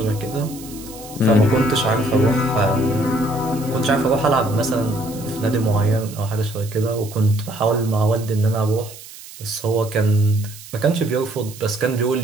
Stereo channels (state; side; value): noise; right; hiss, 17 dB below the sound